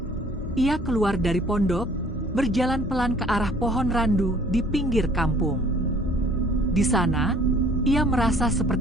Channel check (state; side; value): normal; both; correlation 0.55